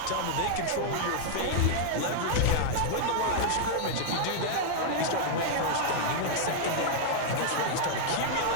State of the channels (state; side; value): different; both; correlation -0.01